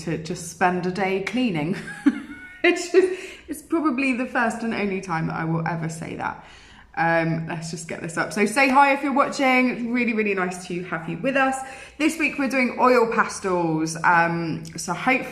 just spend a day cleaning. It's probably the first and only time that I will ever say that. Let's just get this up. So say hi if you're watching. It's really, really nice to have you with us. This week we're doing oil pastels. So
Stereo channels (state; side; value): identical; both; correlation 1.00